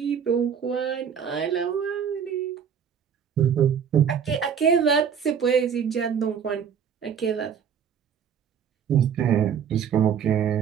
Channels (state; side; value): quieter; left; 7.6 dB